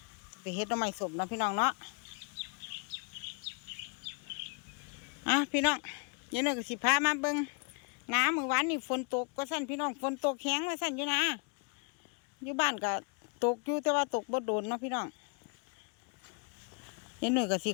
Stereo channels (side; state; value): right; quieter; 38.6 dB